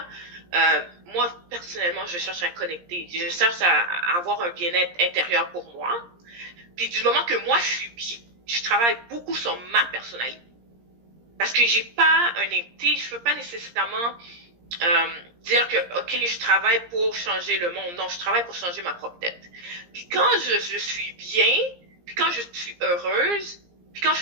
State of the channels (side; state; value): left; late; 17 ms